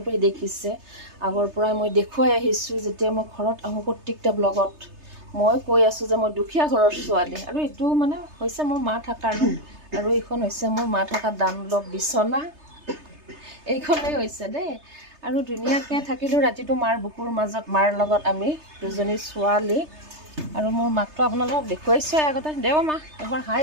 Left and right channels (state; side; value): late; left; 3.3 ms